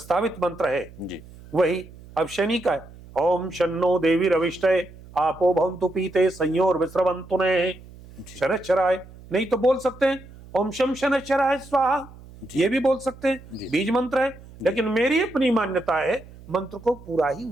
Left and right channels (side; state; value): right; noise; hum, 20 dB below the sound